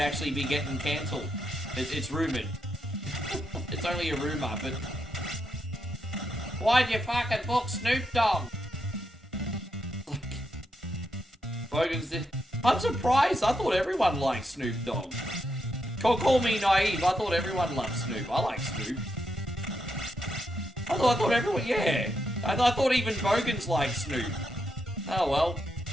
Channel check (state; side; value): normal; both; correlation 0.82